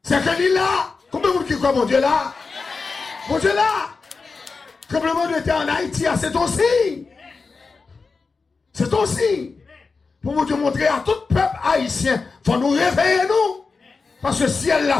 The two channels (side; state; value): right; quieter; 4.4 dB